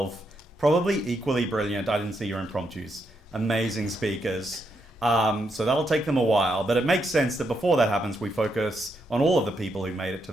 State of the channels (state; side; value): normal; both; correlation 0.80